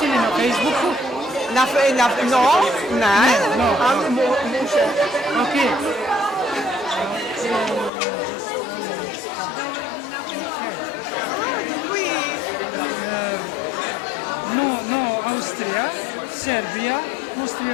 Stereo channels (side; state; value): right; drops out; at 7.9 s